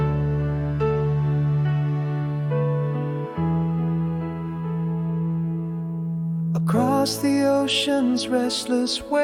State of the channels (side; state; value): both; identical; correlation 1.00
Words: Across the ocean's restless